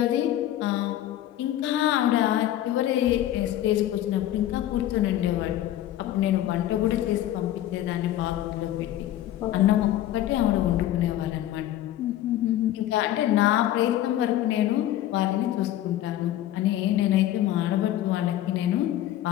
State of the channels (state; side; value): quieter; right; 13.1 dB